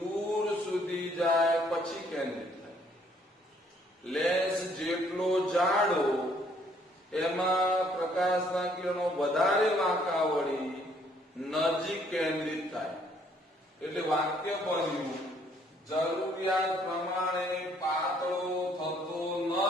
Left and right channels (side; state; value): both; normal; correlation 0.65